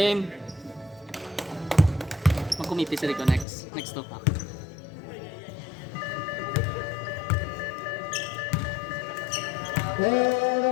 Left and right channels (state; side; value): drops out; right; at 3.5 s